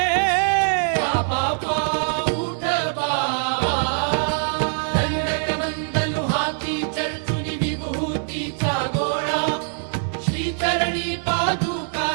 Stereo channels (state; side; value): silent; left; 57 dB below the other